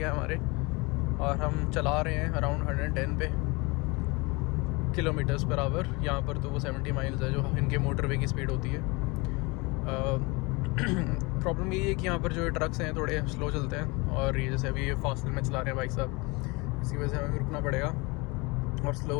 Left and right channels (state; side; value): quieter; right; 26.3 dB